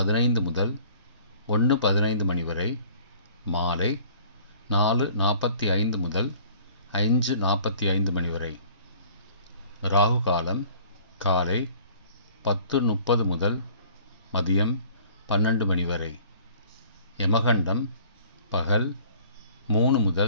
முதல் 1:15 மணி வரை, மாலை 4:45 முதல் 5:45 மணி வரை. ராகு காலம் காலை 10:30 முதல் மதியம் 12 மணி வரை. யமகண்டம் பகல் 3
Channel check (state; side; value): inverted; both; correlation -0.52